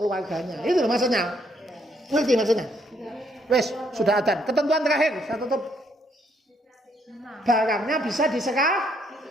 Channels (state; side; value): normal; both; correlation 0.71